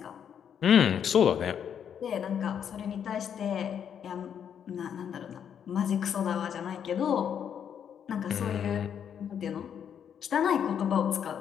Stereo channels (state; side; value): quieter; right; 8.4 dB